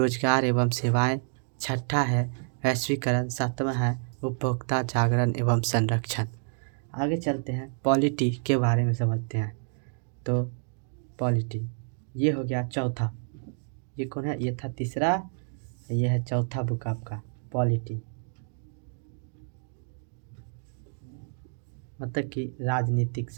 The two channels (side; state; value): left; silent; 59 dB below the other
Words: एवं सेवाएं, छठा है वैश्वीकरण, सातवां है उपभोक्ता जागरण एवं संरक्षण। आगे चलते हैं पॉलिटी के बारे में समझते हैं। तो पॉलिटी ये हो गया चौथा। ये कौन है? ये था तीसरा, ये है चौथा बुक आपका पॉलिटी, मतलब कि राजनीतिक